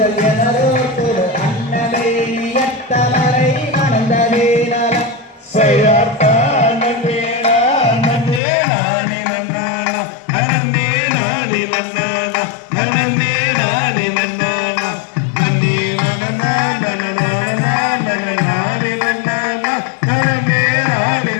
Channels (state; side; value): drops out; right; at 8.4 s